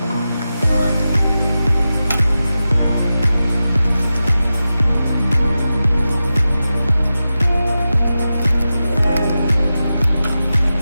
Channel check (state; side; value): inverted; both; correlation -0.92